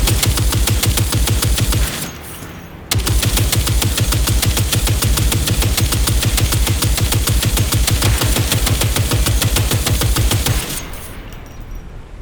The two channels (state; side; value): identical; both; correlation 1.00